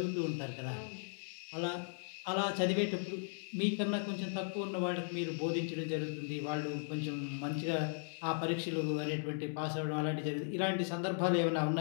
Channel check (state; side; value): silent; right; 53 dB below the other